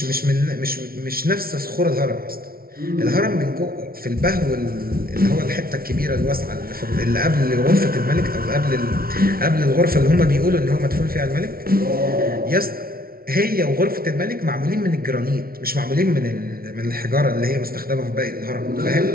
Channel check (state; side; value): late; left; 0.43 ms